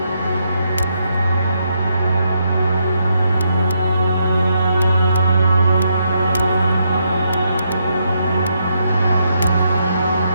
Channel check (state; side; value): inverted; both; correlation -0.78